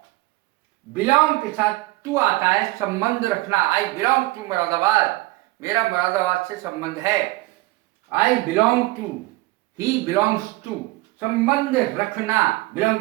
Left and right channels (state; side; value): quieter; left; 20.6 dB